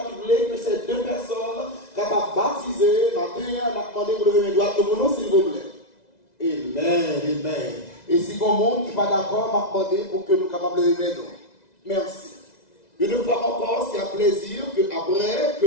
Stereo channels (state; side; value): late; right; 2.0 ms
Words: qui voulait que ces deux personnes capables de baptiser, matin, on a demandé pour lever les doigts de mon nom, s'il vous plaît. Amen, amen. Et si bon monde qui n'est pas d'accord, m'a demandé pour que nous soyons capables de lever nos. Merci. Une fois encore, c'est un plaisir que après que